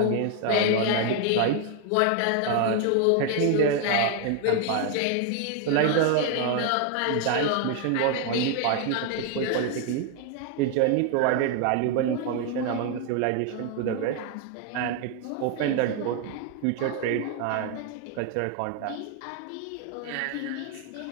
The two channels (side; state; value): both; different; correlation 0.01